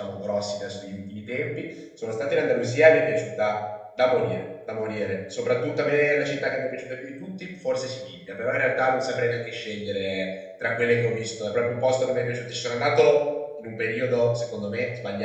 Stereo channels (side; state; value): both; identical; correlation 1.00